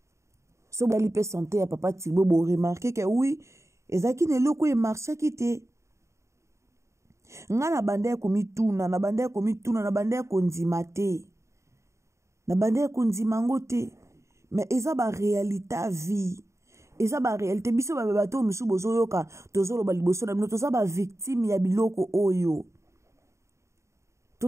So bali pe santé ya papa Tibo bo remarquer que oui ezaki ne loko e marché kite nga na bande ya komituna na bande ya komituna na bande ya konzima te na bande ya konzima ngote mais eza ba réalité vie eza ba réalité biso ba bato musu bozo yoka tozolo ba liboso na bino toza ba victime ya biloko oyo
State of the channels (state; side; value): late; left; 0.14 ms